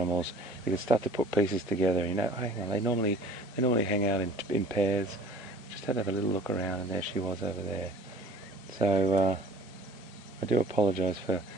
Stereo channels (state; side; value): normal; both; correlation 0.48